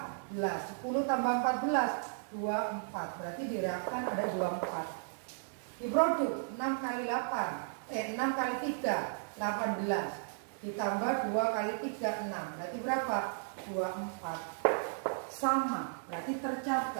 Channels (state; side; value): silent; left; digital silence